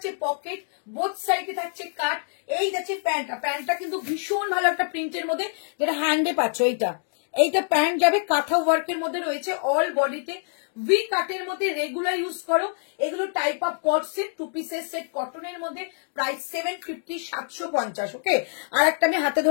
পকেট, বোথ সাইডে থাকছে কাট। এই যাচ্ছে প্যান্টটা, প্যান্টটা কিন্তু ভীষণ ভালো একটা প্রিন্টের মধ্যে, যেটা হ্যান্ডে পাচ্ছ। এইটা প্যান্ট যাবে কাঁথা ওয়ার্কের মধ্যে রয়েছে, অল বডিতে ভি কাটের মধ্যে, রেগুলার ইউজ করো। এগুলো type of co-ord set, two পিসের সেট কটনের মধ্যে। প্রাইস 750, 750, ওকে। আর একটা আমি হাতে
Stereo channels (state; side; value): silent; right; 59 dB below the other